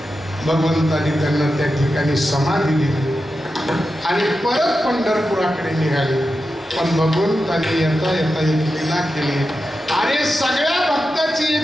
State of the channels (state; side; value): normal; both; correlation 0.90